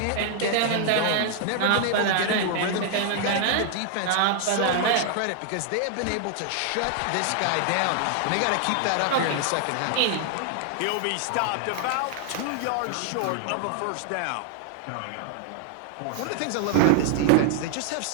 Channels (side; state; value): both; different; correlation 0.00